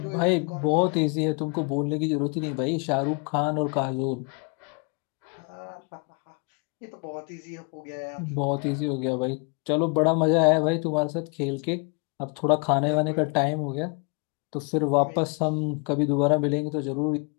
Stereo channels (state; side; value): quieter; right; 35.5 dB